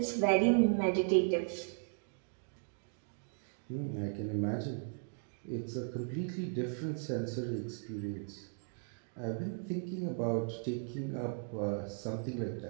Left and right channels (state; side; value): silent; left; 53 dB below the other